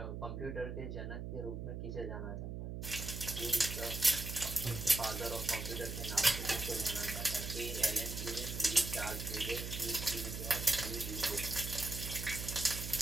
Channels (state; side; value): noise; right; hum, 5 dB below the sound